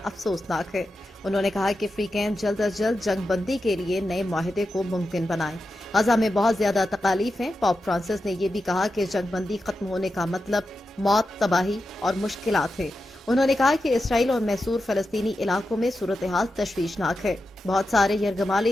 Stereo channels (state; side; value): normal; both; correlation 0.90